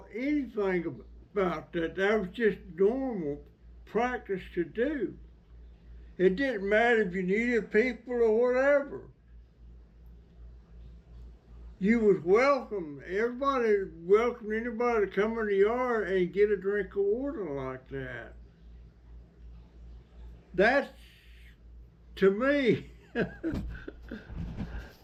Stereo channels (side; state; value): both; identical; correlation 1.00